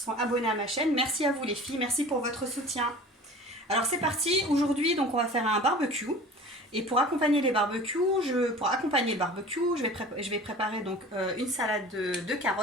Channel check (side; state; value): both; normal; correlation 0.41